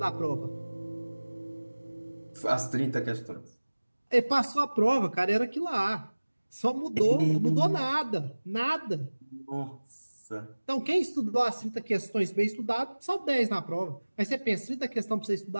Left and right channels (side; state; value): both; inverted; correlation -1.00